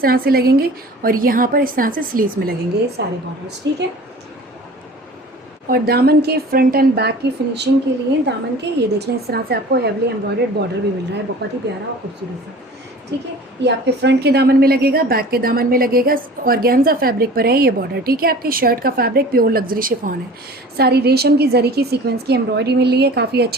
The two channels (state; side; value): normal; both; correlation 0.43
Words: तरह से लगेंगे और यहाँ पर इस तरह से स्लीव्स में लगेंगे ये सारे बॉर्डर्स। ठीक है, और दामन के फ्रंट एंड बैक की फिनिशिंग के लिए दामन के ये देख लें, इस तरह से आपको हेवली एम्ब्रॉयडर्ड बॉर्डर भी मिल रहा है, बहुत ही प्यारा और खूबसूरत सा। ठीक है, ये आपके फ्रंट के दामन में लगेगा, बैक के दामन में लगेगा। ऑर्गेन्जा फैब्रिक पर है ये बॉर्डर। ठीक है, आपकी शर्ट का फैब्रिक प्योर लग्जरी शिफॉन है। सारी रेशम की जरी की सीक्वेंस की एम्ब्रॉयडरी मिल रही है। काफ़ी